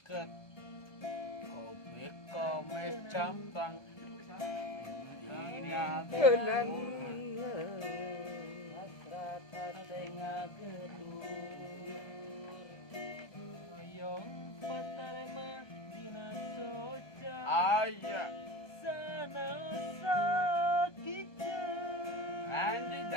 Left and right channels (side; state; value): right; late; 1.2 ms